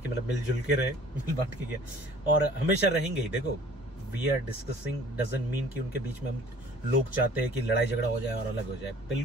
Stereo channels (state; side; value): normal; both; correlation 0.51